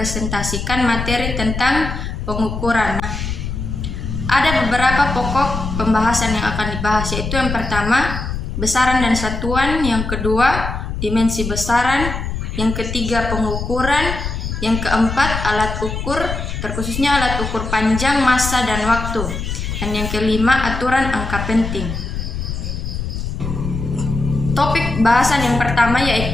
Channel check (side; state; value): left; noise; rumble, 5 dB below the sound